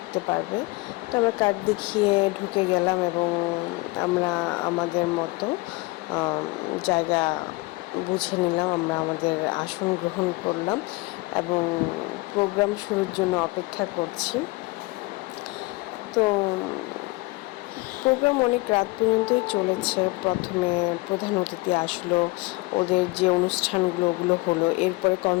পারবে। তো আমরা কার্ড দেখিয়ে ঢুকে গেলাম এবং আমরা আমাদের মতো জায়গা বুঝে নিলাম। আমরা আমাদের আসন গ্রহণ করলাম এবং প্রোগ্রাম শুরুর জন্য অপেক্ষা করছি। তো প্রোগ্রাম অনেক রাত পর্যন্তই চলেছে। প্রথমে প্রধান অতিথি আসলো, ওদের যে অনুষ্ঠানগুলো ওগুলো হলো, এরপরে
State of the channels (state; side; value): quieter; right; 23.5 dB